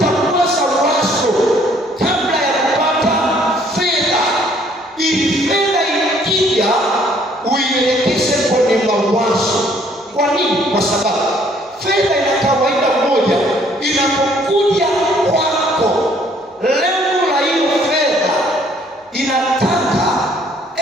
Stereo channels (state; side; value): normal; both; correlation 0.62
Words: kwanza wazo kabla ya kupata fedha, ili fedha ikija nini? Kwa sababu fedha ina kawaida moja, inapokuja kwako, lengo la hiyo fedha inataka